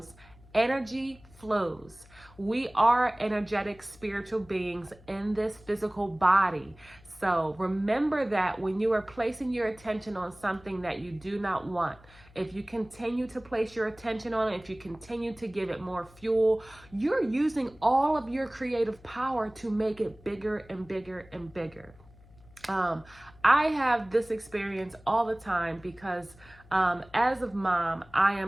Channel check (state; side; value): noise; left; hum, 24 dB below the sound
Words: energy flows. We are energetic spiritual beings in this physical body. So remember that when you are placing your attention on something that you do not want, if you continue to place your attention on it, if you continue to give it more fuel, you're using all of your creative power to make it bigger and bigger and bigger. I have this experience all the time because as a mom, I